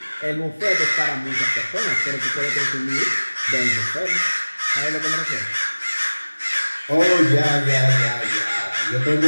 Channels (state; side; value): inverted; both; correlation -1.00